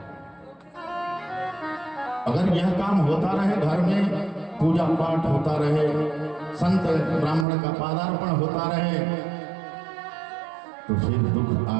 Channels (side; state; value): left; drops out; at 7.5 s